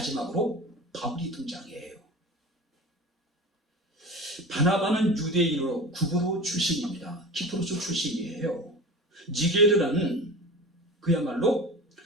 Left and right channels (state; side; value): normal; both; correlation 0.33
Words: 바울이 등장해요. 바나바는 유대인으로 구브로 출신입니다. 키프로스 출신이에요. 니게르는 그야말로